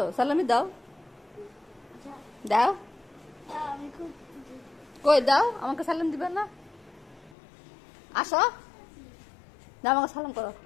সালামি দাও, দাও, কই দাও, আমাকে সালাম দিবে না? আসো দাও, আমাকে সালাম করো,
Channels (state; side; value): drops out; right; at 7.4 s